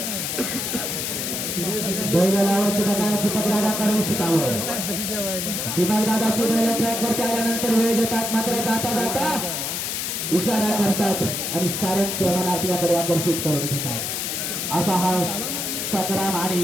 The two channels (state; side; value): noise; left; hiss, 2 dB below the sound